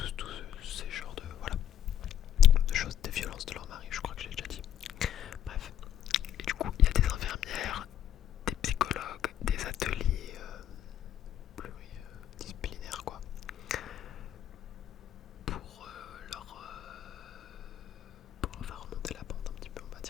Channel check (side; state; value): right; quieter; 10.5 dB